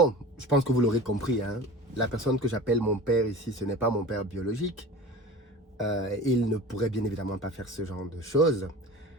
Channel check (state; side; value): normal; both; correlation 0.37